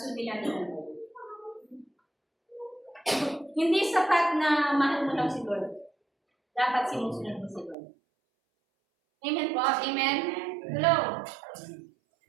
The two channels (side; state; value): left; drops out; at 7.8 s